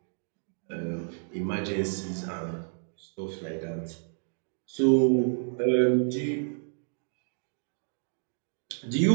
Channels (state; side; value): silent; left; 58 dB below the other